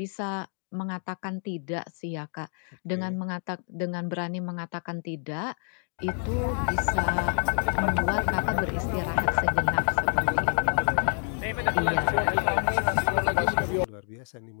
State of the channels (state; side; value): silent; right; 60 dB below the other